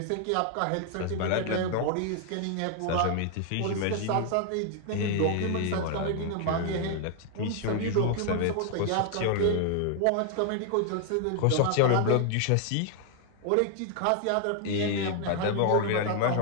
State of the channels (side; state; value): both; different; correlation 0.00